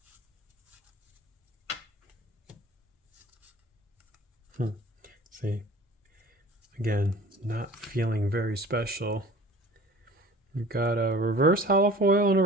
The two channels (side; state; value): both; normal; correlation 0.45